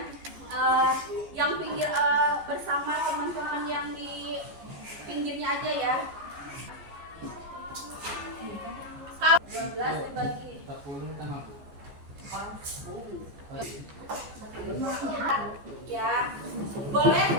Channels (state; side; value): late; left; 14 ms